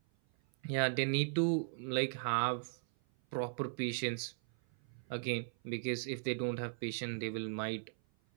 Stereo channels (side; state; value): left; silent; 53 dB below the other